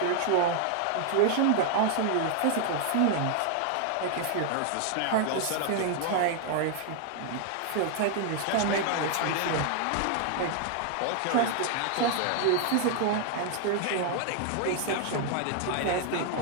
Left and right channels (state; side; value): different; both; correlation 0.00